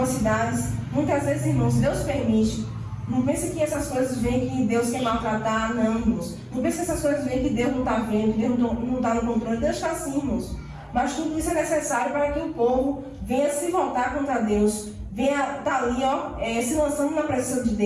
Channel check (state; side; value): identical; both; correlation 1.00